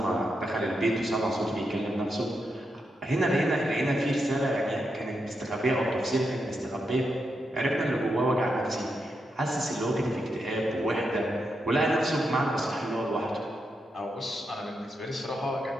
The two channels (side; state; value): both; normal; correlation 0.84